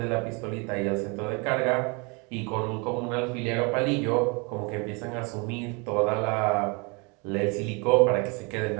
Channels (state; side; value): quieter; left; 30.8 dB